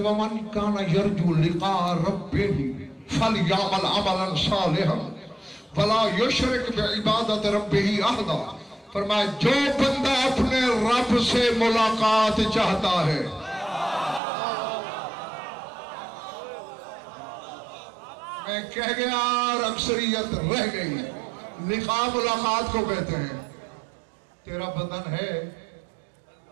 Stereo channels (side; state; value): left; drops out; at 14.2 s